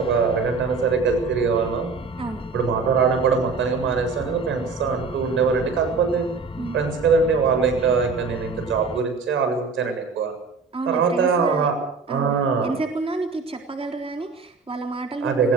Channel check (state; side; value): quieter; left; 4.6 dB